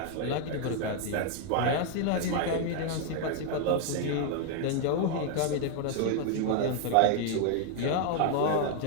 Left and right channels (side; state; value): both; different; correlation 0.00